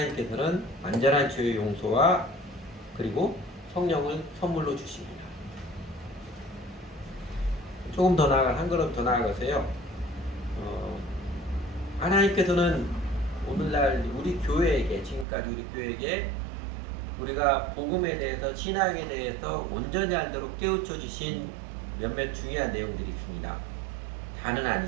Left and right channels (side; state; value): left; drops out; at 15.2 s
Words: 완전한 죄의 용서와 그리고 성령을 선물로 주십니다. 조금 더 나아가, 한 걸음 더 나아가서요. 하나님께서는 오늘날 우리 교회에게, 지금까지 우리 교회에게 우리가 복음에 대해서, 신앙에 대해서 온전히 알도록 깨우쳐 주신 몇몇 중요한 내용들이 있습니다. 다는